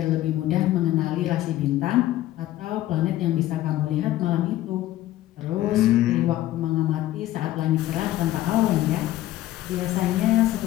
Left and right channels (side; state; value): right; quieter; 14.6 dB